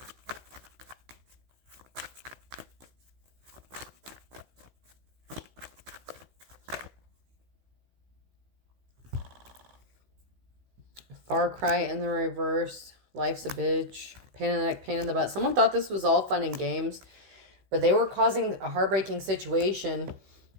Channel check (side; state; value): left; late; 16 ms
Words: Far cry in the reverse. Life's a bitch. Pain in the neck, pain in the butt. Someone thought this was all fun and games, but they were causing a heartbreaking situation